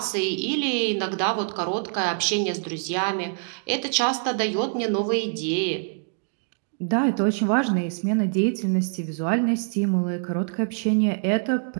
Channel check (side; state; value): left; silent; digital silence